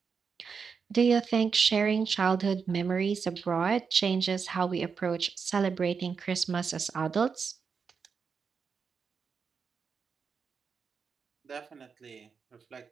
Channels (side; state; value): left; quieter; 5.8 dB